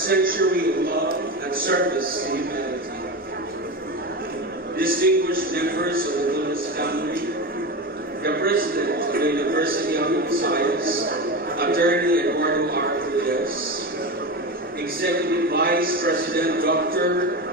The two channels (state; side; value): normal; both; correlation 0.22